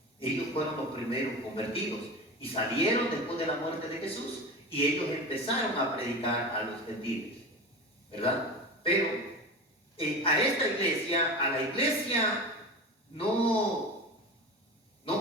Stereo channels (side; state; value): both; normal; correlation 0.28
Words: Ellos fueron los primeros convertidos y salieron después de la muerte de Jesús, y ellos empezaron a predicar a los gentiles, ¿verdad? Pero a esta iglesia, a la iglesia no